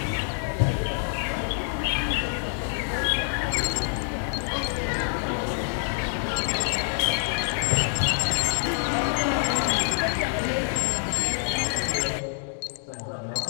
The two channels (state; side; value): silent; right; digital silence